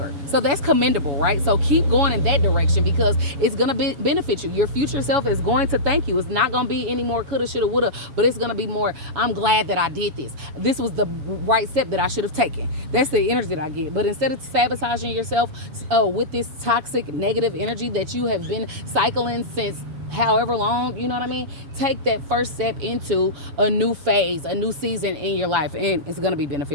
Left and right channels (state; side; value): late; left; 7.1 ms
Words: So that's commendable, right? So keep going in that direction because it's going to benefit you. Your future self is going to thank you. It's not going to be any more coulda, shoulda, woulda, but it's going to be more, I'm glad that I did this. This was the right step that I should have taken. That's the energy that I get. But instead of sabotaging yourself with this toxic, negative energy that you have been cycling since however long, you know what I mean, take that first step into a new phase, a new season in your life, and it's going to be